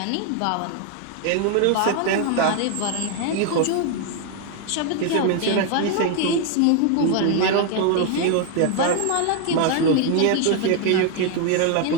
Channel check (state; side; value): different; both; correlation 0.00